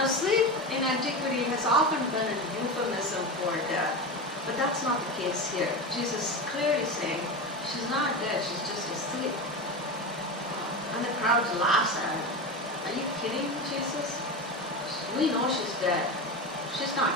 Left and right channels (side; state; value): both; normal; correlation 0.22